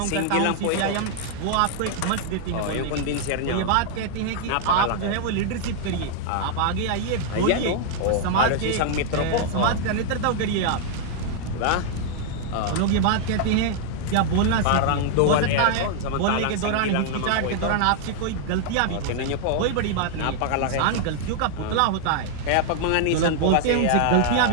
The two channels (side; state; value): both; different; correlation 0.00